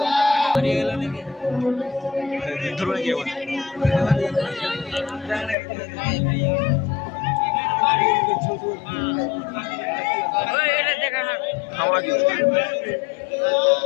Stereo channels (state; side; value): drops out; right; at 5.6 s